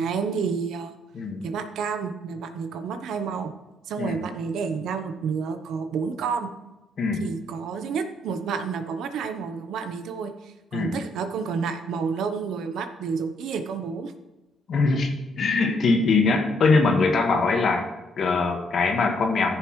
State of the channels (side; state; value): both; normal; correlation 0.70